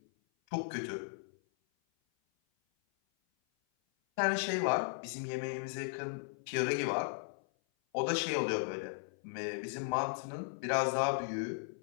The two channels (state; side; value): silent; right; 54 dB below the other